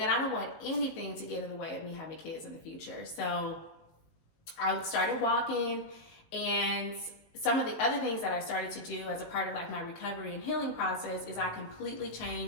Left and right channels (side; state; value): right; late; 19 ms